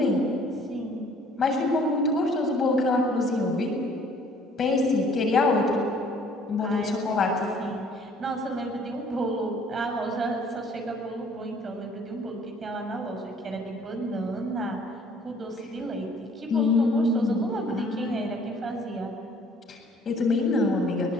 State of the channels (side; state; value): both; normal; correlation 0.57